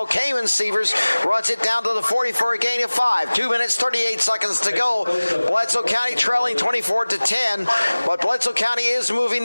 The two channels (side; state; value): both; inverted; correlation -1.00